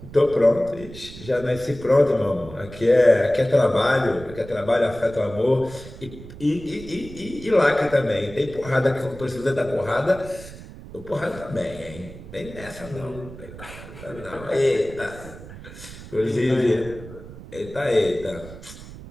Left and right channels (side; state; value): right; noise; rumble, 15 dB below the sound